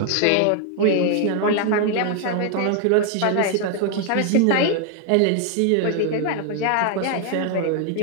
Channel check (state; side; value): different; both; correlation 0.00